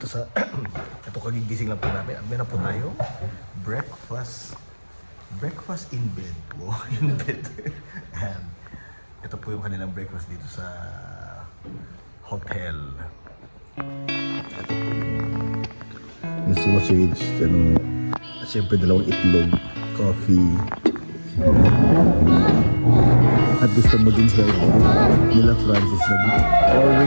sa ito, kagigising lang po namin. Ang na po tayo, breakfast in bed. Wow, in bed. And ito po yung kanilang breakfast dito sa hotel. Ito po yung sausage, at syempre dalawang itlog, coffee, at gusto maging healthy nila Francis,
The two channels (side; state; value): both; inverted; correlation -1.00